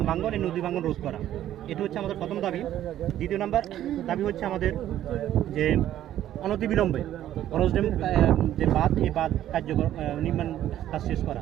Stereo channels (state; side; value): quieter; left; 12.2 dB